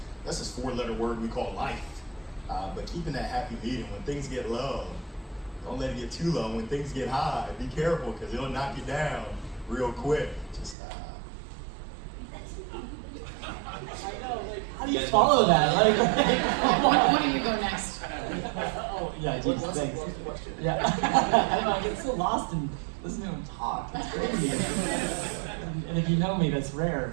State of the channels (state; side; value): drops out; left; at 10.8 s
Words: this 4-letter word we call life. But keeping that happy medium when things get low, Don't let it get too low. When things get high, be careful because it'll knock you down real quick. Just How do you follow that? Like, Why don't you go next? oh, yeah, geez, thanks. Yeah. I don't know, I get so lost in listening to him talk. It's crazy. And if you know me, that's